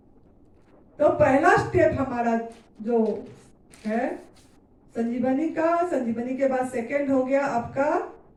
तो पहला स्टेप हमारा जो है संजीवनी के बाद सेकंड हो गया आपका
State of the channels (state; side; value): identical; both; correlation 1.00